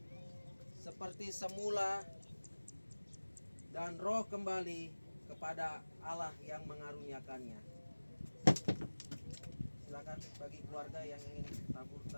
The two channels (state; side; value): inverted; both; correlation -1.00